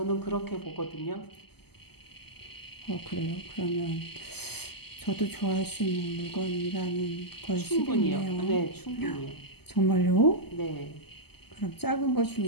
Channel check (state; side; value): late; right; 0.96 ms